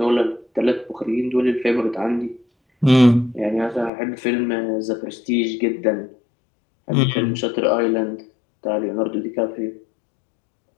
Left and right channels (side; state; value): right; drops out; at 3.9 s